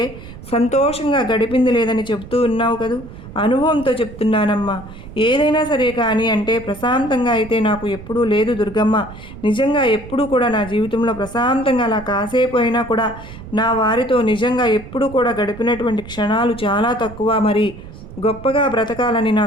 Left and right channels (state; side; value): noise; right; rumble, 15 dB below the sound